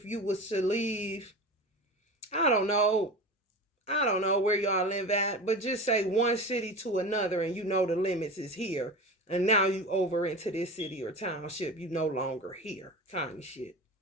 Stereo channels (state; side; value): normal; both; correlation 0.30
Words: you was to leave, I don't know where y'all live at, but just say one city to another and you know the limits is here. And now you over into this city or township, you no longer here, kind of shit.